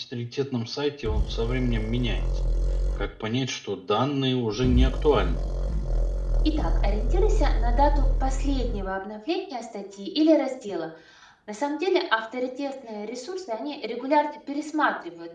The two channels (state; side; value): identical; both; correlation 1.00